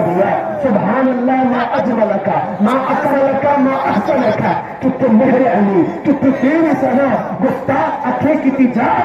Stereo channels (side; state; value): both; identical; correlation 1.00